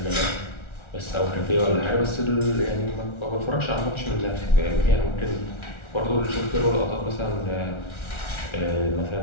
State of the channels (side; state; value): right; late; 1.4 ms